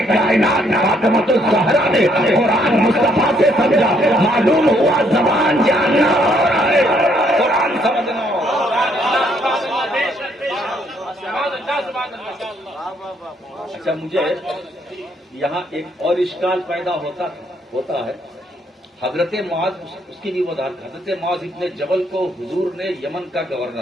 کائنات فاطمۃ الزہرا نے قرآن مصطفیٰ سے سمجھا۔ معلوم ہوا زبان جاننا اور ہے، قرآن سمجھنا۔ اچھا مجھے یہاں ایک اور اشکال پیدا ہوتا ہے، حضرت معاذ، اس کی بھی وضاحت، حضرت معاذ ابن جبل کو حضور نے یمن کا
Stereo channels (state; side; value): normal; both; correlation 0.69